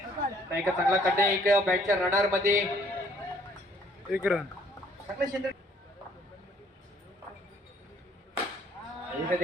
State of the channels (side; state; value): both; normal; correlation 0.62